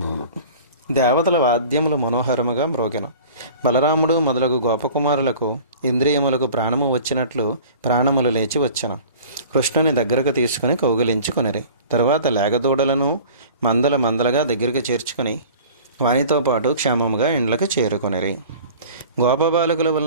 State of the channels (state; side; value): inverted; both; correlation -0.43